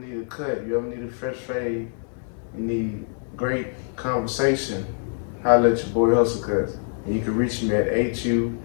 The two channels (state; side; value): silent; right; digital silence